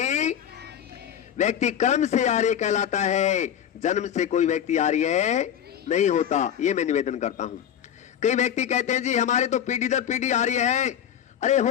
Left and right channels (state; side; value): quieter; right; 9.5 dB